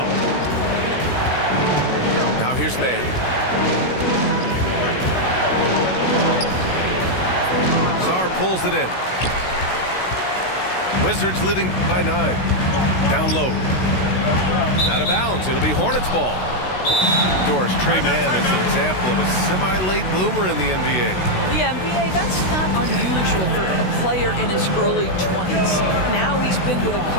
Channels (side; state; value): right; late; 16 ms